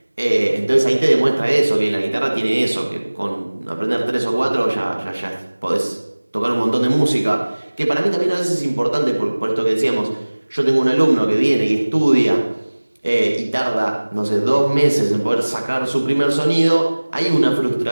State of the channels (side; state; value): both; inverted; correlation -1.00